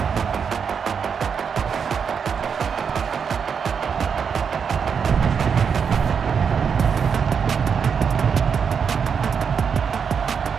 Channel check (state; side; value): quieter; left; 6.6 dB